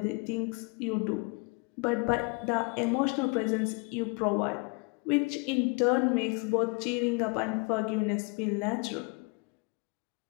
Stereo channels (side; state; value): right; quieter; 31.2 dB